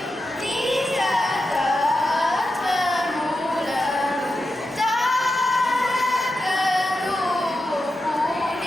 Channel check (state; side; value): normal; both; correlation 0.89